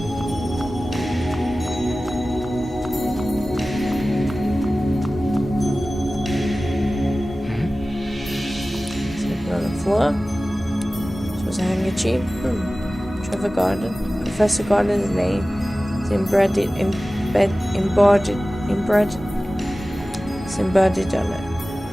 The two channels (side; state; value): both; normal; correlation 0.96